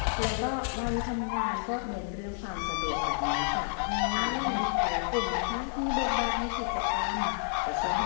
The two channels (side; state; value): right; silent; 58 dB below the other